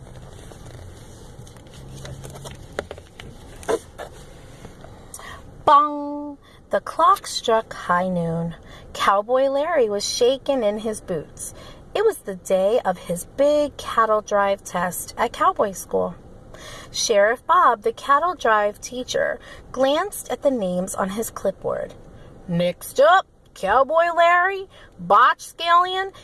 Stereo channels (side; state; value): both; identical; correlation 1.00